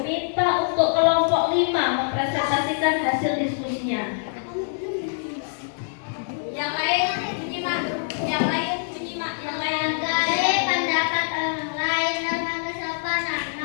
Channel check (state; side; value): silent; right; digital silence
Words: minta untuk kelompok 5 mempresentasikan hasil diskusinya. Yang lain menyimak, yang lain menyimak, yang lain. Menghargai pendapat orang lain, norma kesopanan,